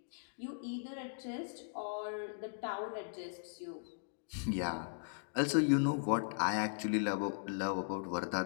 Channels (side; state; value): right; silent; digital silence